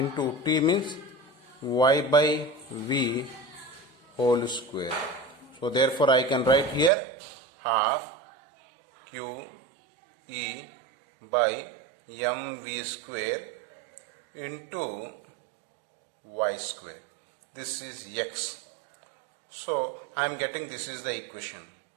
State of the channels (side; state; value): left; drops out; at 6.9 s